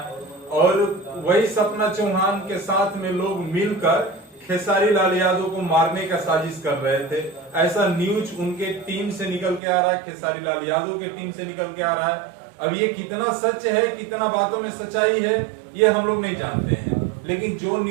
और वही सपना चौहान के साथ में लोग मिलकर खेसारी लाल यादव को मारने का साजिश कर रहे थे। ऐसा न्यूज उनके टीम से निकल के आ रहा है, खेसारी लाल यादव के टीम से निकल के आ रहा है। अब ये कितना सच है, कितना बातों में सच्चाई है, ये हम लोग नहीं जानते हैं, लेकिन जो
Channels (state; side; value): drops out; left; at 9.6 s